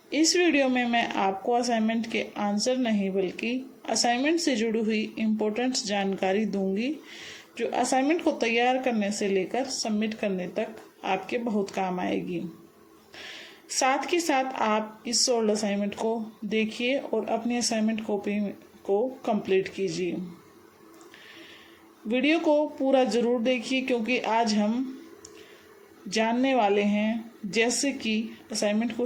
इस वीडियो में मैं आपको असाइनमेंट के आंसर नहीं बल्कि असाइनमेंट से जुड़ी हुई इम्पोर्टेंट जानकारी दूंगी जो असाइनमेंट को तैयार करने से लेकर सबमिट करने तक आपके बहुत काम आएगी। साथ के साथ आप इस सोल्ड असाइनमेंट को देखिए और अपनी असाइनमेंट कॉपी को कंप्लीट कीजिए। वीडियो को पूरा ज़रूर देखिए क्योंकि आज हम जानने वाले हैं जैसे कि असाइनमेंट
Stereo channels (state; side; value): identical; both; correlation 1.00